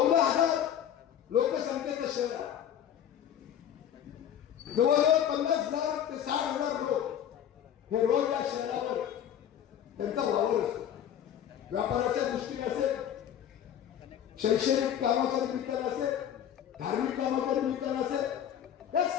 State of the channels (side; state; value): right; quieter; 9.9 dB